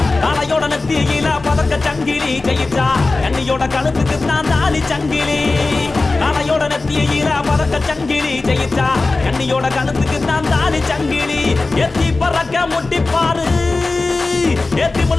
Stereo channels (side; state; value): right; quieter; 3.5 dB